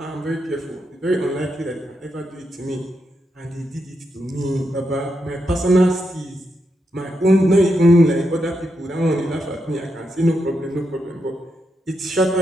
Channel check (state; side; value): normal; both; correlation 0.83